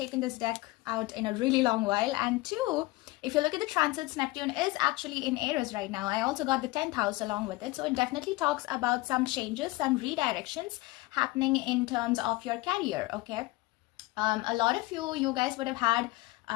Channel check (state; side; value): quieter; right; 20.2 dB